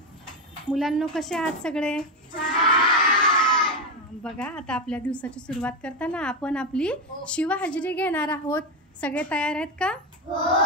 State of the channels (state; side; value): normal; both; correlation 0.12